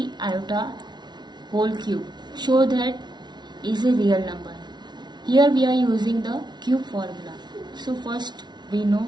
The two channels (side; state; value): left; late; 0.20 ms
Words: iota whole cube. Show that is a real number. Here we are using the cube formula. So first we know